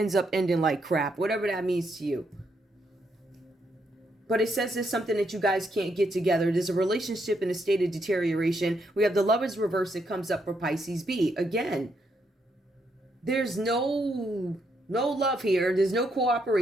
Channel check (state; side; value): normal; both; correlation 0.77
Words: up ending like crap. Whatever that means to you. But it says there's something that you guys can't get together. There's a relationship in a state of deterioration. We have the Lovers reverse that comes up for Pisces B. Again, there's no love here. There's no